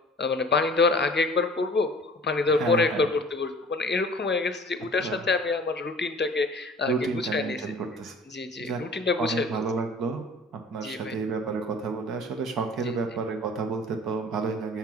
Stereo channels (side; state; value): both; normal; correlation 0.47